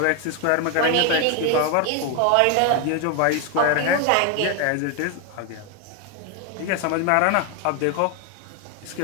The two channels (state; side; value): different; both; correlation 0.01